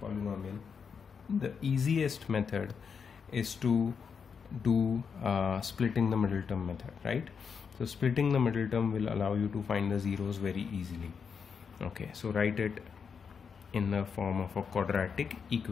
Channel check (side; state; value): right; quieter; 6.2 dB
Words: polynomial, the easiest method is to do splitting the middle term method, right? So splitting the middle term will allow you to find the zeros very easily. Okay, so write it in the form of a quadratic